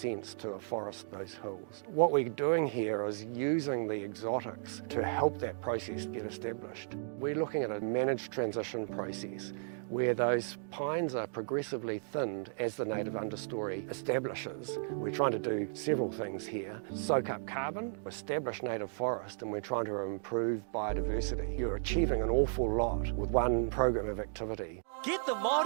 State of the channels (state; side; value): silent; left; digital silence